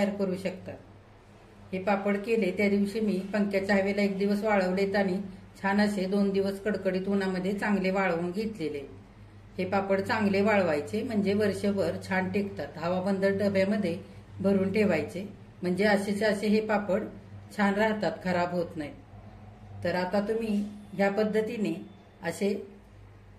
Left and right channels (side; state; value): both; identical; correlation 1.00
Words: करू शकता. हे पापड केले त्या दिवशी मी पंख्याच्या हवेला 1 दिवस वाळवलेत आणि छान असे 2 दिवस कडकडीत उन्हामध्ये चांगले वाळवून घेतलेले. हे पापड चांगले वाळवायचे म्हणजे वर्षभर छान टिकतात. हवाबंद डब्यामध्ये भरून ठेवायचे म्हणजे असेचे असे हे पापड छान राहतात, खराब होत नाहीत. तर आता तुम्ही ह्या पद्धतीने असे